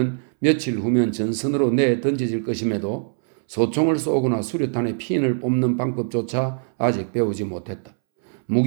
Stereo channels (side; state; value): left; silent; 64 dB below the other